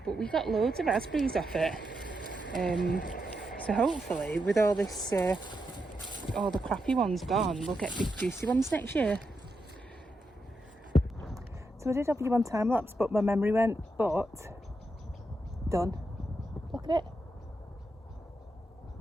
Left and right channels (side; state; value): both; normal; correlation 0.84